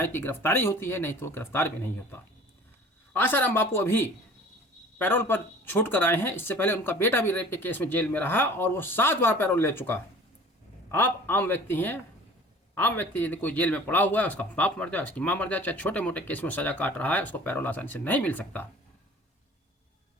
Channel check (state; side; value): normal; both; correlation 0.46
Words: की गिरफ्तारी होती है, नहीं तो गिरफ्तार भी नहीं होता। आसाराम बापू अभी पैरोल पर छूट कर आए हैं। इससे पहले उनका बेटा भी रेप के केस में जेल में रहा और वो 7 बार पैरोल ले चुका। आप आम व्यक्ति हैं, आम व्यक्ति यदि कोई जेल में पड़ा हुआ है, उसका बाप मर जाए, उसकी माँ मर जाए, चाहे छोटे मोटे केस में सजा काट रहा है, उसको पैरोल आसानी से नहीं मिल सकता।